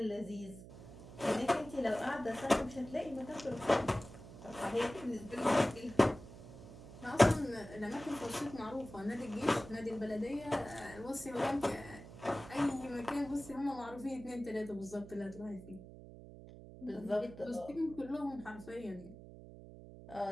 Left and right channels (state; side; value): noise; right; hum, 15 dB below the sound